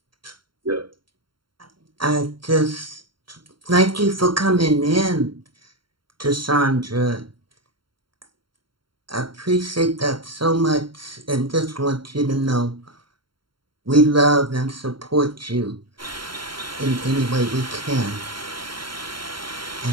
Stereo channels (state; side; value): late; left; 0.73 ms